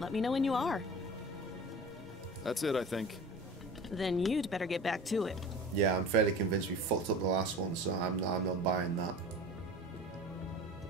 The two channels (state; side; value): normal; both; correlation 0.37